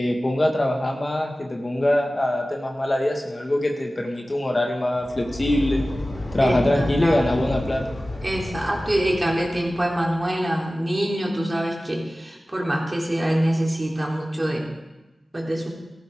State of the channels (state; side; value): normal; both; correlation 0.96